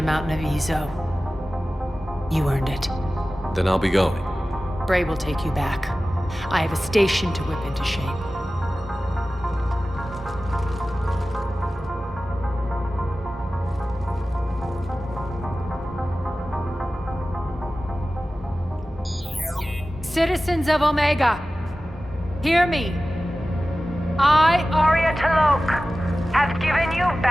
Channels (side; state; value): both; normal; correlation 0.96